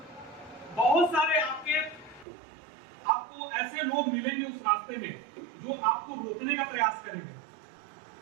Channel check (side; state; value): left; drops out; at 2.2 s